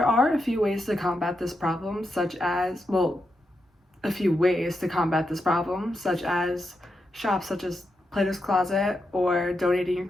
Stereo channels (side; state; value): both; normal; correlation 0.85